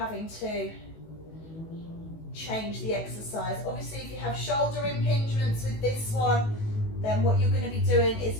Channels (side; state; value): right; late; 19 ms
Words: to change the exercise. Obviously, if you have shoulder impingements with this one, then what you're going to be doing